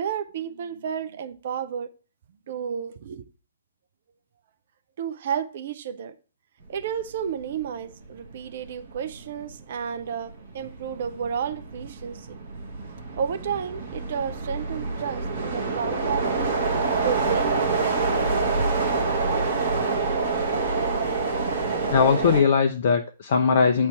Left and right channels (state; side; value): inverted; both; correlation -0.55